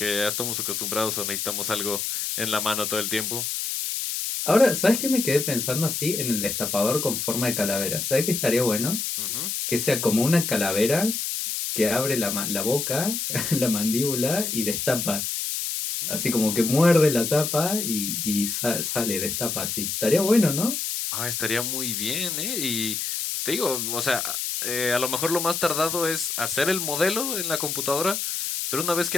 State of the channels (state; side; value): noise; left; hiss, 2 dB below the sound